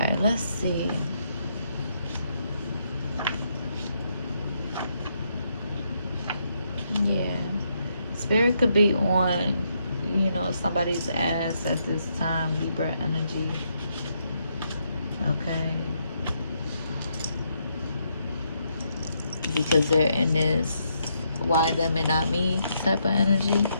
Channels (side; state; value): both; inverted; correlation -0.77